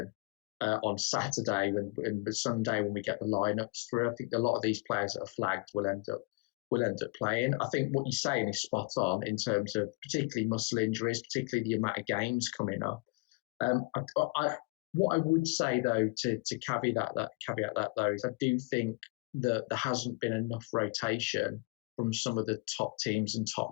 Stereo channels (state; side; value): quieter; right; 27.2 dB